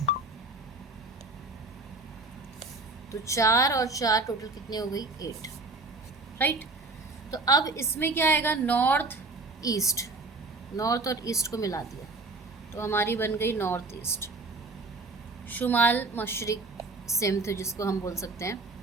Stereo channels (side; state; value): left; quieter; 3.4 dB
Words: तो 4 और 4 टोटल कितनी हो गई? 8। राइट। तो अब इसमें क्या आएगा? नॉर्थ ईस्ट, नॉर्थ और ईस्ट को मिला दिया तो हमारी बन गई नॉर्थ ईस्ट। शुमाल मशरिक सेम थे, जिसको हम बोल सकते हैं